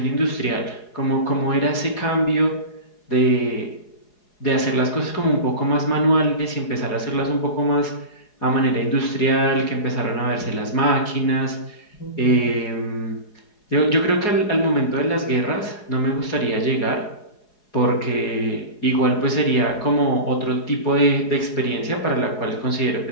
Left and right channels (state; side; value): late; right; 4.8 ms